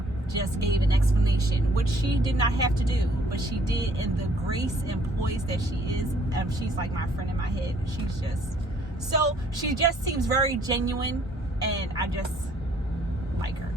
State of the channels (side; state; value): both; normal; correlation 0.61